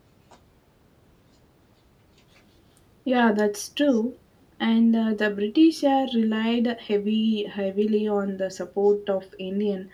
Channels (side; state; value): both; identical; correlation 1.00